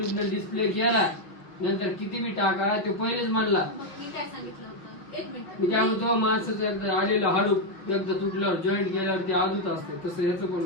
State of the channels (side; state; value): right; late; 5.6 ms